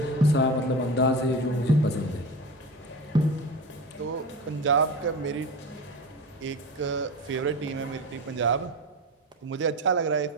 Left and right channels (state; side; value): normal; both; correlation 0.27